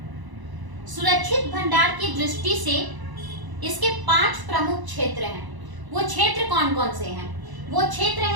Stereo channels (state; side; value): late; left; 1.0 ms